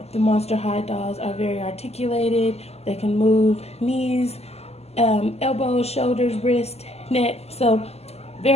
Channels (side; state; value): right; late; 0.30 ms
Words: the Monster High dolls are very articulated. They can move knees, elbows, shoulders, wrist, neck. So